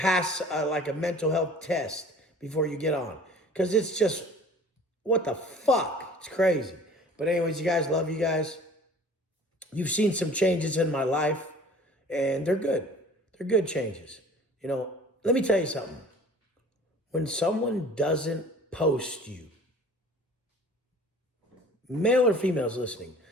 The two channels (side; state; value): both; normal; correlation 0.47